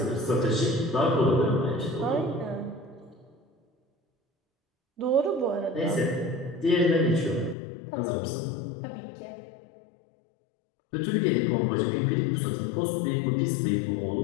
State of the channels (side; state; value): right; drops out; at 7.6 s